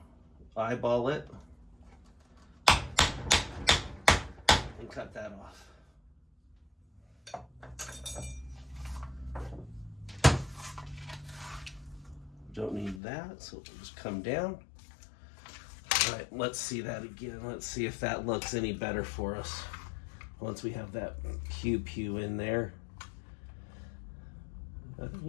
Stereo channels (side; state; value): right; drops out; at 13.0 s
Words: eyeball it and cut that off. Don't need that, so it'll just come down. All right, let's see that again. Let's see if that looks any better for us once we have that 𝐂𝐤𝐄 in there.